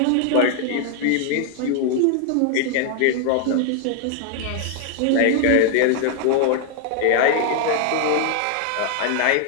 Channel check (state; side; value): different; both; correlation 0.00